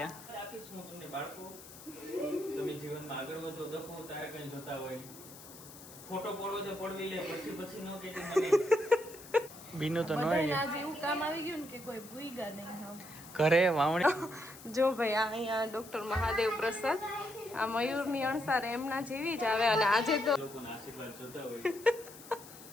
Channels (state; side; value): noise; left; hiss, 17 dB below the sound